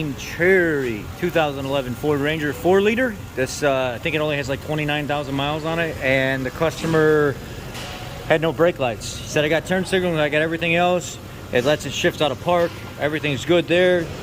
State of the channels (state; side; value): identical; both; correlation 1.00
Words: cherry, 2011 Ford Ranger 4-liter. This, I think it only has like 29,000 miles on it, and the customer had no brake lights. He said, I got turn signals, I got everything else. It lets it shift out of park. Everything's good there.